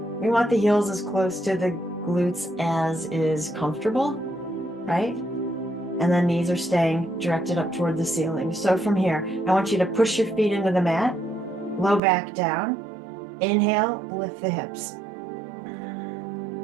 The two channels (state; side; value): drops out; left; at 12.0 s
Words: want the heels as close to the glutes as is comfortable, right? And then knees are staying directed up toward the ceiling. So from here, I want you to push your feet into the mat, low back down. Inhale, lift the hips.